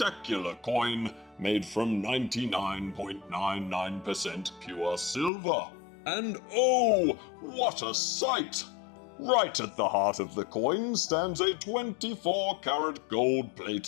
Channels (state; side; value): drops out; right; at 5.3 s